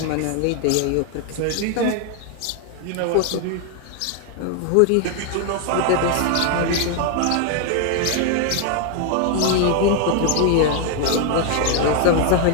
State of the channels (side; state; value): both; different; correlation 0.01